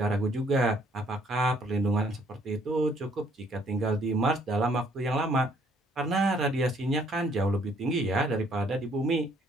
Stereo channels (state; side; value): normal; both; correlation 0.64